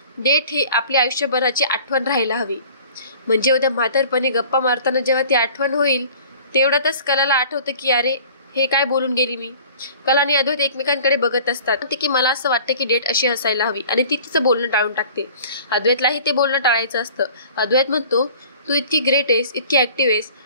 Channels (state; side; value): inverted; both; correlation -0.47